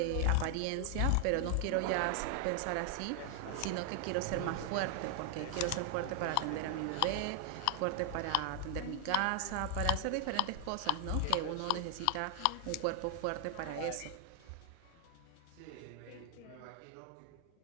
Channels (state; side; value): different; both; correlation 0.00